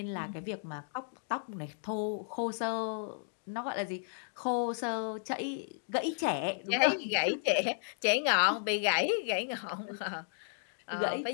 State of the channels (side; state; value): right; silent; digital silence